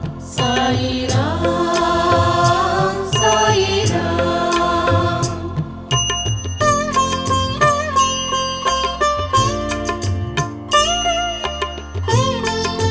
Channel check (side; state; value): both; identical; correlation 1.00